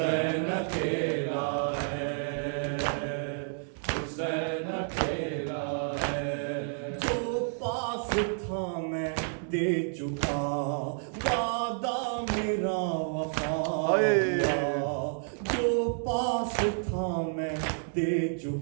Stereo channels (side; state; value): left; silent; digital silence